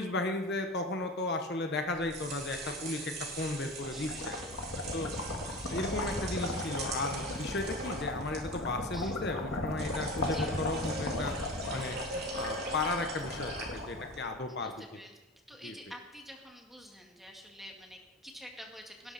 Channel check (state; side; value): normal; both; correlation 0.31